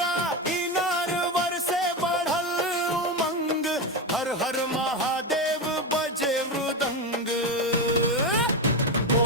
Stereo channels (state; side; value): normal; both; correlation 0.14